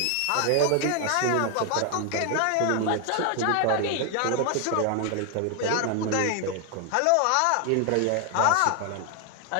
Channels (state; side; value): different; both; correlation 0.00